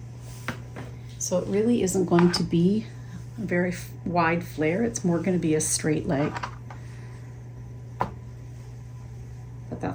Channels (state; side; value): identical; both; correlation 1.00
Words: So it really isn't going to be a very wide flare. It's more going to be a straight leg. But